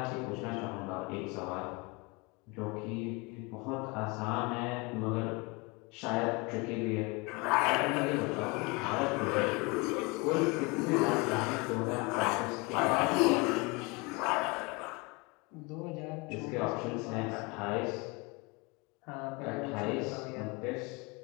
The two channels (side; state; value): right; quieter; 27.0 dB